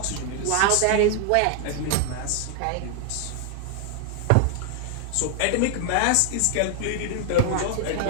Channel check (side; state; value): both; different; correlation 0.00